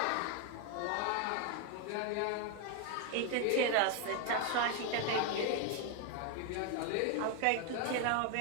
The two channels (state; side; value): different; both; correlation 0.01